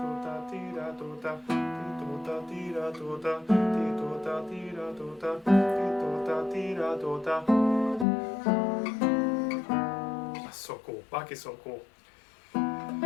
That's so cool. Bach is so cool.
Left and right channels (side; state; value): right; drops out; at 8.1 s